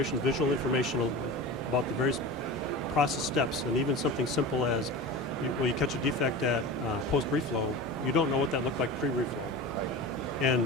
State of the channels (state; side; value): normal; both; correlation 0.31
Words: visual information about the various process steps, and even something simple as you catch a defect at post-reflow, you don't know what that looked like pre-reflow.